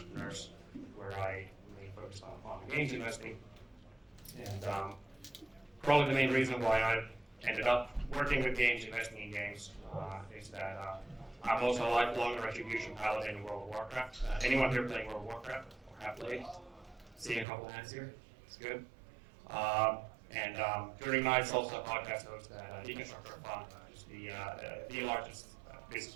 where I mainly focused on games investing. And probably the main reason why I ended up working with games, investing in games, is that I'm also a lifelong Retribution paladin in World of Warcraft. Anyone here playing World of Warcraft or have played? Seeing a couple hands here, it's good. And during nights, also a podcast host at Deconstructor Fund, which is the largest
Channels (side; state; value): left; drops out; at 17.4 s